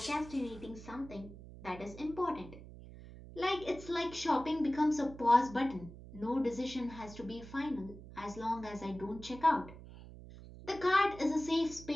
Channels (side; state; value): right; noise; hum, 15 dB below the sound